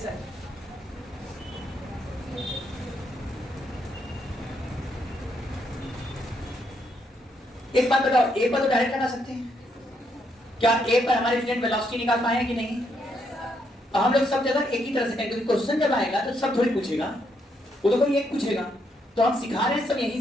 एक बात बताओ, ए पर तो डायरेक्ट लगा सकते हैं, क्या ए पर हमारे स्टूडेंट वेलोसिटी निकाल पाए हैं कि नहीं? हम लोग सब जगह एक ही तरह से करेंगे, क्योंकि क्वेश्चन जब आएगा तो सब थोड़ी पूछेगा, वो तो कोई एक पूछेगा। तो हम सिखा रहे हैं सब यहीं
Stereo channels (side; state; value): both; normal; correlation 0.76